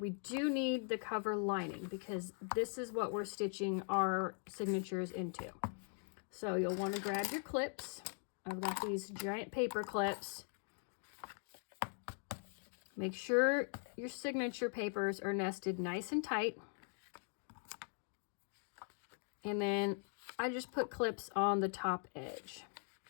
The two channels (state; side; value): silent; right; 50 dB below the other